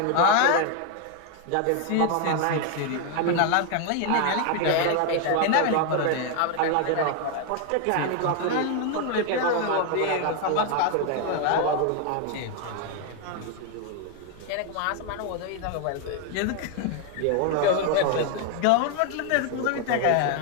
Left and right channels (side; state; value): both; different; correlation 0.01